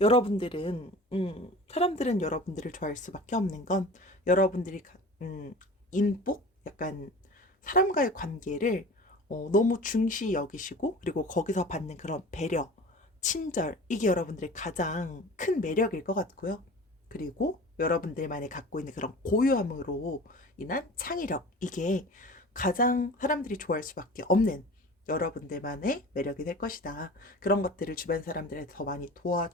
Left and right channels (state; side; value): normal; both; correlation 0.39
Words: 여러분들은, 사람들은 여러분들을 좋아할 수밖에 없는 건 여러분들이, 인복? 약간 사람과의 관계를 너무 중시 여기시고, 그리고 거기서 받는 그런 배려, 친절, 이게 여러분들의 가장 큰 매력일 것 같고요. 그리고 여러분들만이 갖고 있는 그런 고유함으로 인한 창의력, 이게 가장 사람들이 좋아할 수밖에 없는 여러분들만의 매력이 될 것이다. 그런 것들을 주변 사람들한테 더 많이